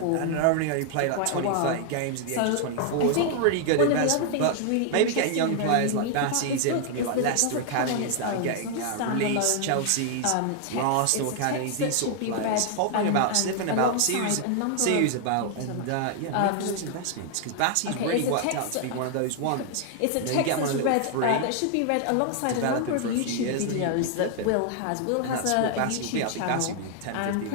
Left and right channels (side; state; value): both; different; correlation 0.00